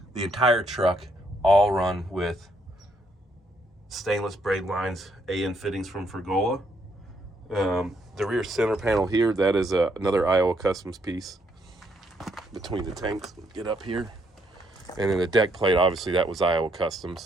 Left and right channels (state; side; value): normal; both; correlation 0.73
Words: The entire truck, all run with stainless braid lines, AN fittings from Fergola. The rear center panel here, that is another Iowa Customs piece between the tanks. Get up here. And then the deck plate, obviously that was Iowa